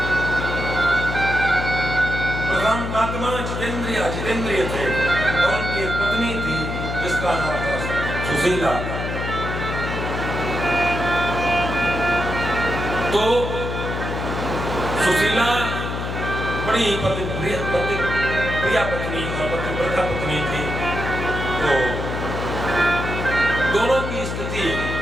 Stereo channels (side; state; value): left; noise; hum, 4 dB below the sound